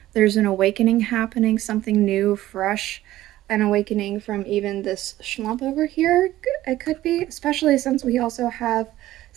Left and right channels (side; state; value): left; quieter; 15.0 dB